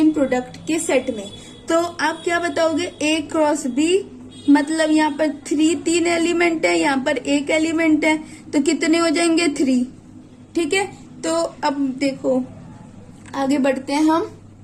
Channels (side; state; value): both; identical; correlation 1.00